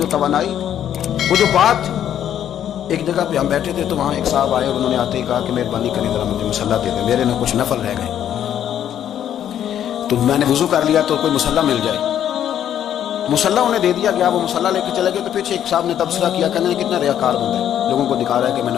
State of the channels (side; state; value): right; quieter; 10.3 dB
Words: توانائی تھی، وہ جو بات تھی. ایک جگہ پہ ہم بیٹھے تھے تو وہاں ایک صاحب آئے اور انہوں نے آتے ہی کہا کہ مہربانی کریں ذرا مجھے مصلی دے دیں، میرے نہ کچھ نفل رہ گئے. تو میں نے وضو کر لیا تو کوئی مصلی مل جائے. مصلی انہیں دے دیا گیا، وہ مصلی لے کے چلے گئے. تو پیچھے ایک صاحب نے تبصرہ کیا، کہنے کتنا ریاکار بندہ ہے، لوگوں کو دکھا رہا ہے کہ میں